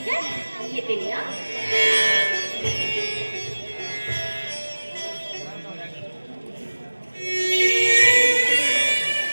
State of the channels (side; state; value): both; inverted; correlation -1.00